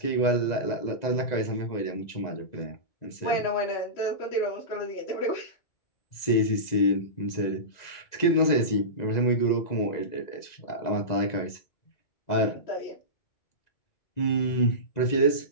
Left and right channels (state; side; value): late; right; 2.0 ms